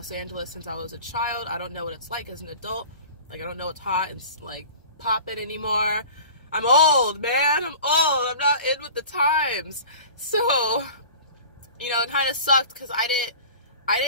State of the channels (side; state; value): both; inverted; correlation -0.40